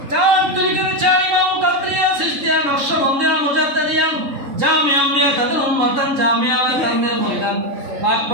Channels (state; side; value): late; left; 3.8 ms